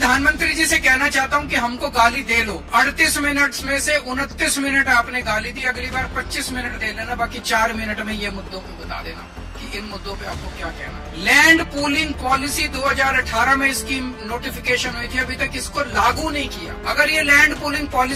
जी से कहना चाहता हूं कि हमको गाली दे लो। 38 मिनट में से 29 मिनट आपने गाली दी, अगली बार 25 मिनट दे लेना, बाकी 4 मिनट में ये मुद्दों को बता देना कि इन मुद्दों पे आपको क्या कहना है। लैंड पूलिंग पॉलिसी 2018 में इसकी नोटिफिकेशन हुई थी, अभी तक इसको लागू नहीं किया। अगर ये लैंड पूलिंग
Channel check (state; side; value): identical; both; correlation 1.00